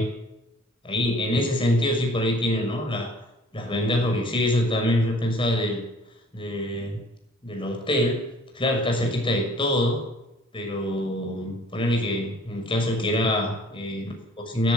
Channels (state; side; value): normal; both; correlation 0.53